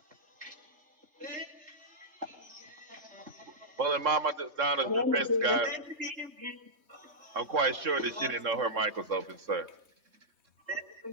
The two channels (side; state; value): left; late; 3.6 ms